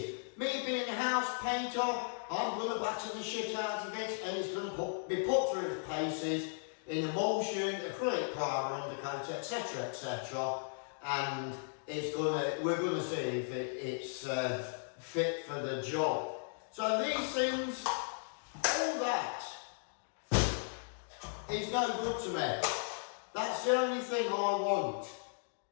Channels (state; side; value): silent; right; digital silence